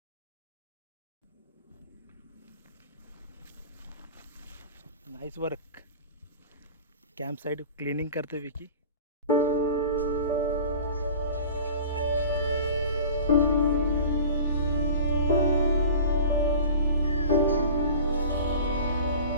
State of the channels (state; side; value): inverted; both; correlation -0.39